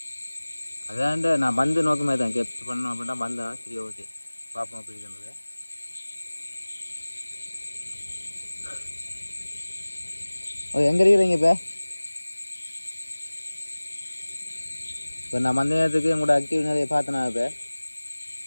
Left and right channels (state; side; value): inverted; both; correlation -1.00